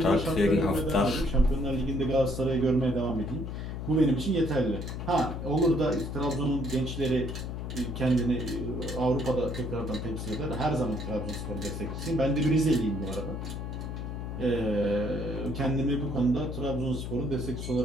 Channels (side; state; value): left; noise; hum, 5 dB below the sound